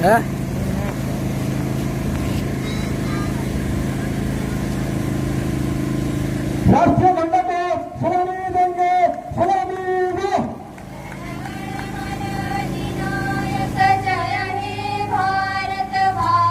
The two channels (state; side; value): identical; both; correlation 1.00